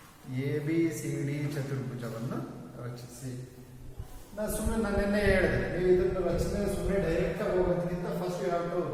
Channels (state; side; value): identical; both; correlation 1.00